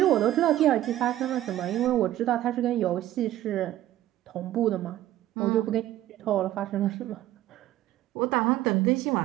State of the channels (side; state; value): left; quieter; 13.9 dB